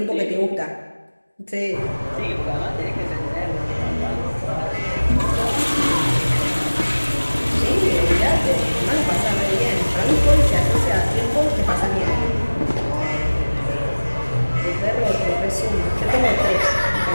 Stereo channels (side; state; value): both; inverted; correlation -1.00